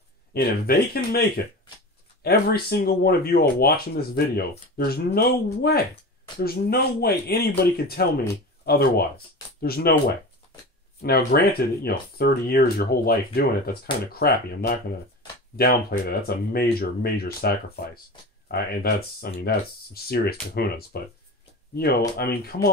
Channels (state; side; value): normal; both; correlation 0.31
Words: and if they can make it, every single one of you all watching this video, there's no way anybody could tell me otherwise. There's no way. Now, granted, you know, 30 years, your whole life doing it, that's kind of crappy. I'm not going to downplay that. That's a major, major sacrifice. And that's some serious kahunas. But, you know, I mean, come